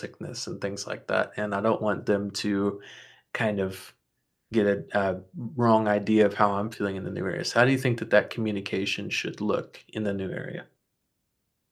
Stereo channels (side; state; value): both; identical; correlation 1.00